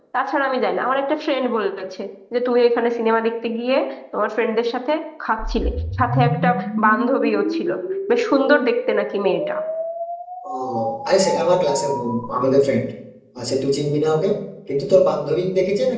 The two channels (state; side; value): identical; both; correlation 1.00